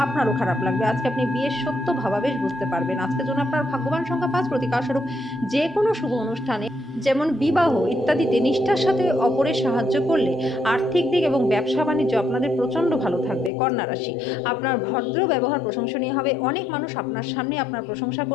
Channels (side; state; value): right; drops out; at 13.5 s